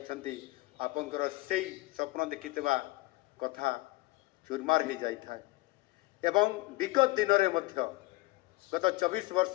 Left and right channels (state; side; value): quieter; right; 21.3 dB